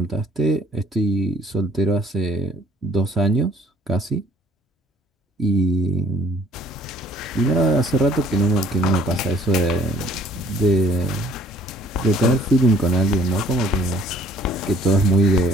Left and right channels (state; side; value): normal; both; correlation 0.58